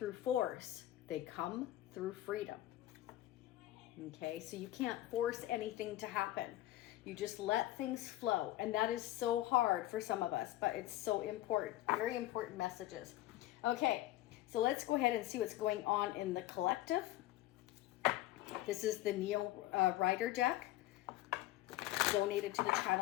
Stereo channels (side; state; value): right; quieter; 15.2 dB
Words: force. They come through freedom. Okay, so you can't force anything to happen. You just let things flow. And that is so hard for some of us, but it's so important. Very important messages. Okay, so let's go ahead and see what's going on in the collective. This is the Neo Rider deck, donated to the